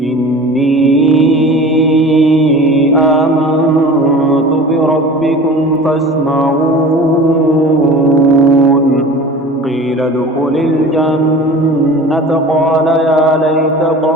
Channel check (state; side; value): normal; both; correlation 0.40